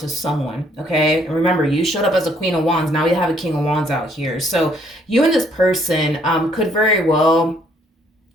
someone, okay? And remember, you showed up as a Queen of Wands. Now we have a King of Wands out here. So you and this person could very well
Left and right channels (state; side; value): normal; both; correlation 0.66